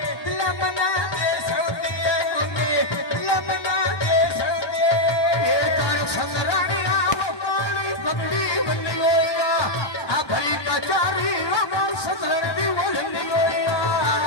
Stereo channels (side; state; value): right; late; 1.1 ms